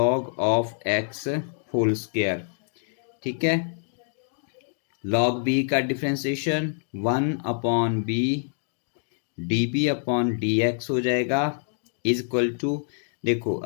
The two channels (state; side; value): silent; right; digital silence